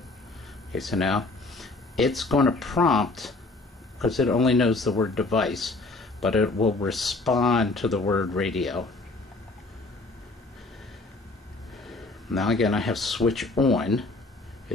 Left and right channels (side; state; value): right; quieter; 3.3 dB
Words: Okay, so now it's going to prompt, because it only knows the word device, but it will respond to the word radio. Now again, I have switch on.